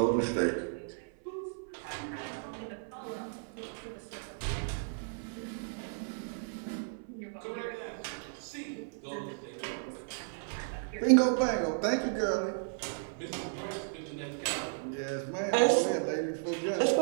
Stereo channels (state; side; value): silent; left; 55 dB below the other